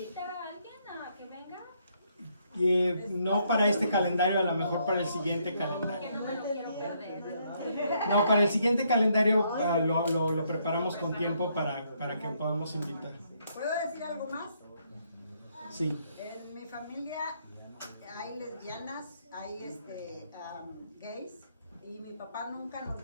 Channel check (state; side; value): inverted; both; correlation -0.72